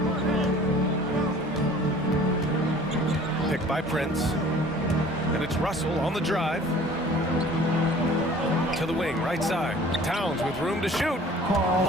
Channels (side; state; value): both; normal; correlation 0.49